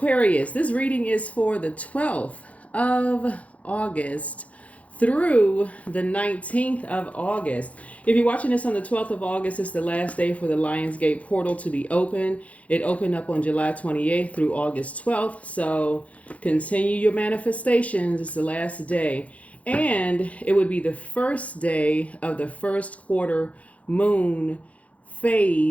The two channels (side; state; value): right; late; 0.066 ms